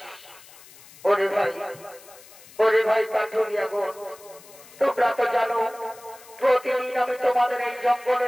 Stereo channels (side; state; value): left; noise; hiss, 21 dB below the sound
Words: ওরে ভাই কাঠুরিয়া গো, তোমরা তো জানো প্রতিদিন আমি তোমাদের এই